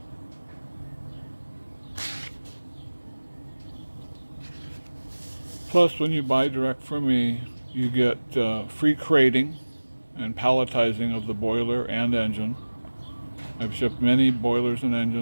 Plus, when you buy direct from me, you get free crating and palletizing of the boiler and engine. I've shipped many boilers and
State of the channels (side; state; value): both; inverted; correlation -1.00